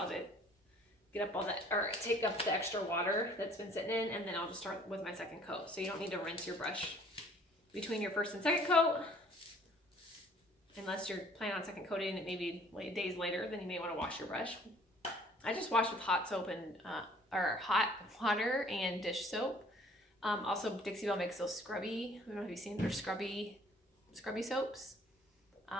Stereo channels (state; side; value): normal; both; correlation 0.55